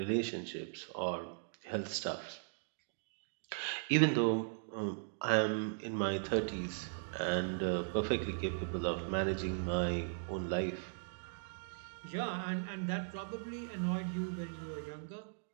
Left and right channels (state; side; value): silent; left; digital silence